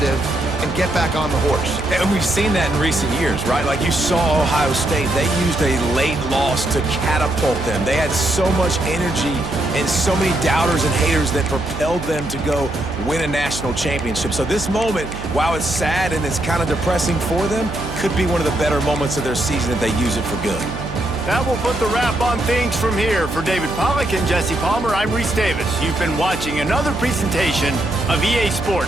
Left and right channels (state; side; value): noise; right; hum, 9 dB below the sound